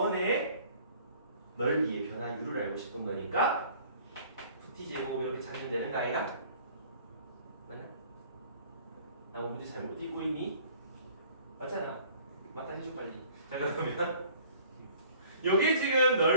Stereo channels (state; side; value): inverted; both; correlation -0.52